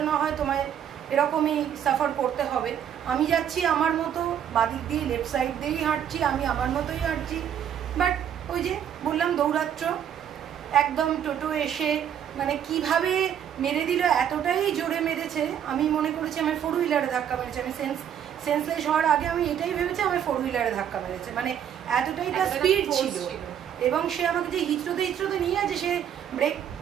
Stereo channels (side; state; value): left; quieter; 9.3 dB